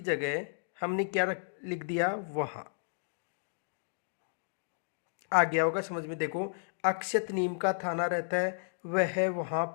जगह हमने क्या लिख दिया, वहां। आ गया होगा समझ में। देखो अक्षित नीम का थाना रहता है, वह वहां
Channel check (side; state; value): right; silent; digital silence